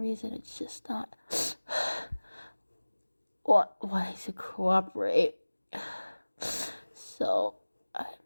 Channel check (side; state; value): both; inverted; correlation -1.00